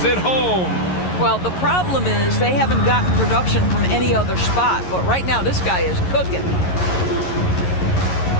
it home. Well, the problem is they haven't gotten production from any other spot. But right now, this guy is cooking.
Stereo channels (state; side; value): late; right; 11 ms